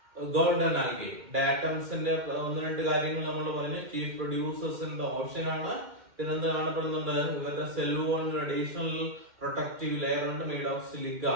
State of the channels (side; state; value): left; late; 2.1 ms